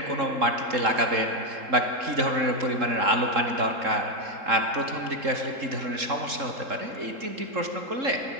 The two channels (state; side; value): late; left; 3.7 ms